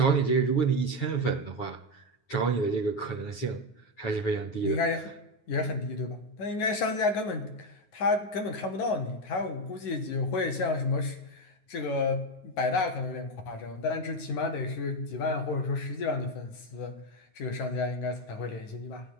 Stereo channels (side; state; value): right; late; 9.4 ms